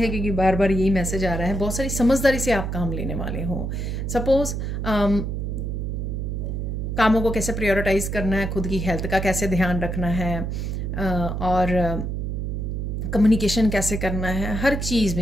क्योंकि बार बार यही मैसेज आ रहा है। बहुत सारी समझदारी से आप काम लेने वाले हो। सपोज कामों को कैसे प्रायोरिटाइज करना है, खुद की हेल्थ का कैसे ध्यान रखना है, और कम्युनिकेशन कैसे करना है, हर चीज़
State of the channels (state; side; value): noise; right; hum, 3 dB below the sound